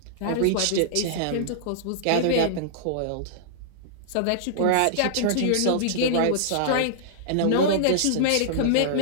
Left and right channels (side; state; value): both; different; correlation -0.02